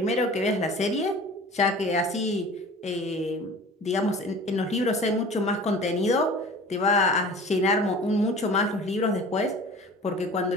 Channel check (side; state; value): both; normal; correlation 0.42